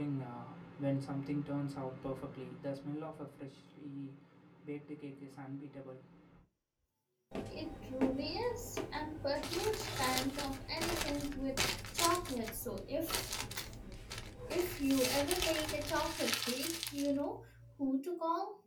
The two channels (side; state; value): both; identical; correlation 1.00